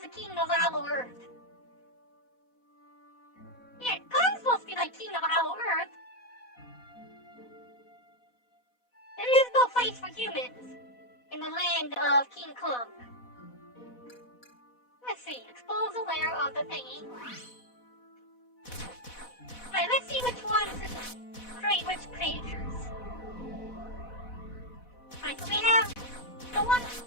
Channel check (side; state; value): right; late; 4.1 ms